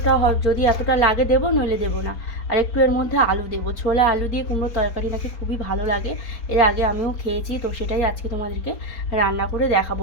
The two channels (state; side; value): late; right; 4.3 ms